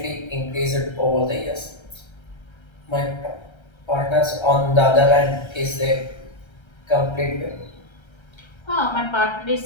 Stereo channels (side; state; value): right; late; 1.3 ms